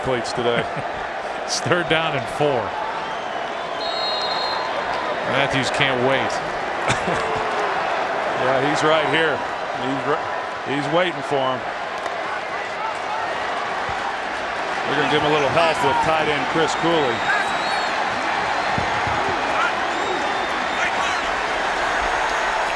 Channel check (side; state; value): both; identical; correlation 1.00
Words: today. It's third down and 4. Matthews can't wait. Yeah, he's right here. He's waiting for him. We're going to give him a little help with tight end Chris Cooley.